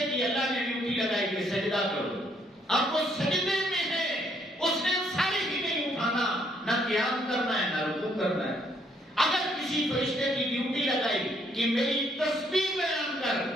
کی اللہ نے ڈیوٹی لگائی کہ سجدہ کرو، اب وہ سجدے میں ہے، اس نے ساری ہی نہیں اٹھانا، نہ قیام کرنا ہے نہ رکوع کرنا ہے۔ اگر کسی فرشتے کی ڈیوٹی لگائی کہ میری تسبیح بیان کر،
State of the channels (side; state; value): both; normal; correlation 0.69